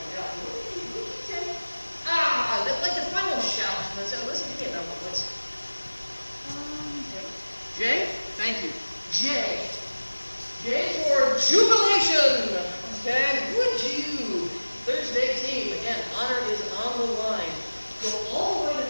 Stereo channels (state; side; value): inverted; both; correlation -1.00